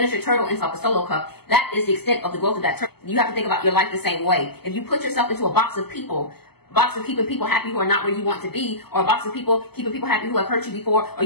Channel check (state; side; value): late; right; 0.96 ms